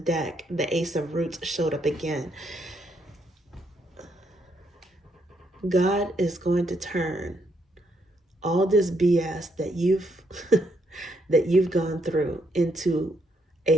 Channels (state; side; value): normal; both; correlation 0.75